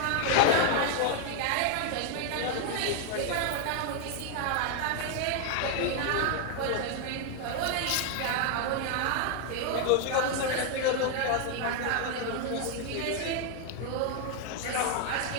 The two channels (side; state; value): both; different; correlation 0.00